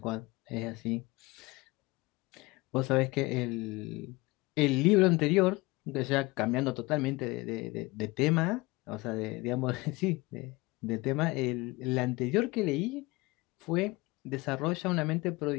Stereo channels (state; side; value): quieter; right; 23.0 dB